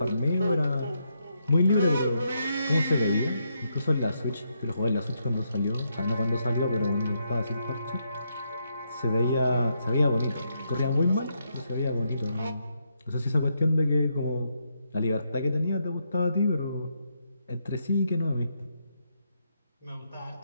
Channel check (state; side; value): inverted; both; correlation -0.79